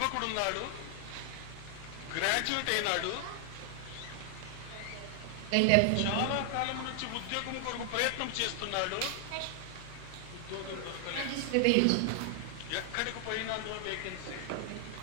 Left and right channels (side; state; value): both; different; correlation 0.00